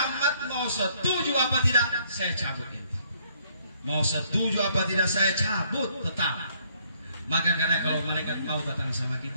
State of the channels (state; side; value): inverted; both; correlation -0.66